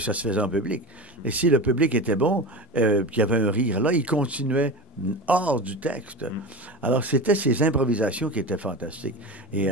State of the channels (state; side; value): normal; both; correlation 0.27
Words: se faisait en public. Et si le public était bon, qu'il y avait un rire là, il continuait hors du texte. Alors, c'était ces improvisations qui étaient fantastiques. Et